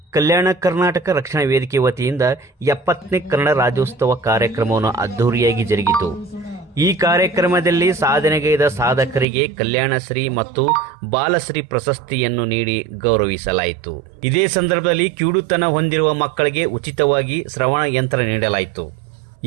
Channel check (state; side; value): drops out; left; at 9.2 s